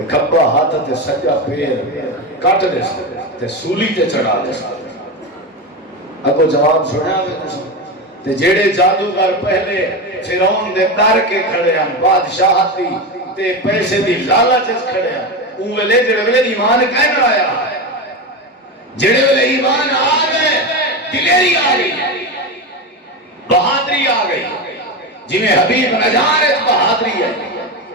کھبا ہاتھ تے سجا پیر کٹ دے تے سولی تے چڑھا دے اگو جواب سنیا تے جڑے جادوگر پہلے فرعون دے در کے کھڑے ہیں بادشاہتی تے پیسے دی لالچ کھڑے ہیں اون ویلے جڑے ویلے ایمان کہنا آیا جڑے ویلے ایمان آ گئے دلیری آ گئی بہادری آ گئی جی میں حبیب نجار بہادری ہے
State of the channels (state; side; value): normal; both; correlation 0.18